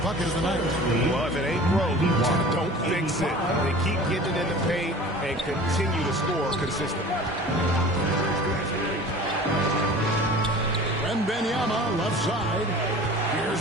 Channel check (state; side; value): normal; both; correlation 0.41